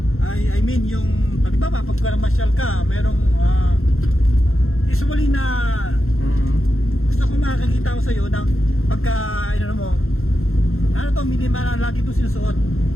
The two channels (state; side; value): late; right; 0.61 ms